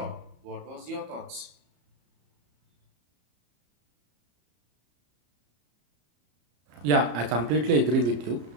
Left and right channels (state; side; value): late; left; 34 ms